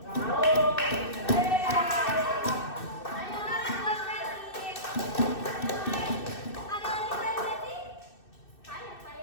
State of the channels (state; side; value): late; right; 2.6 ms